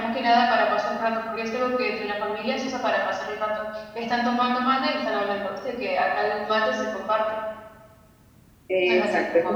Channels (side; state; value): both; identical; correlation 1.00